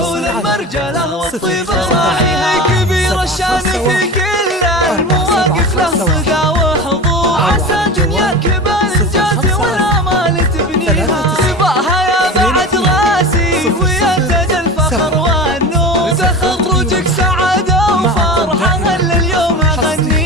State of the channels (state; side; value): normal; both; correlation 0.30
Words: المرجلة والطيب راعيها. كبير الشان في كل المواقف له صدى وحضور، عسى دنياك بالإنجاز والآمال تبنيها. تباها يا بعد راسي ويا تاج الفخر والنور، تخرجك سعادة وفرحة هلا اليوم